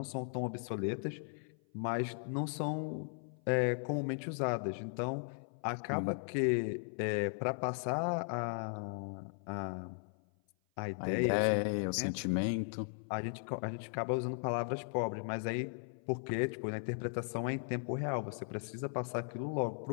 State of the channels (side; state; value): right; silent; 53 dB below the other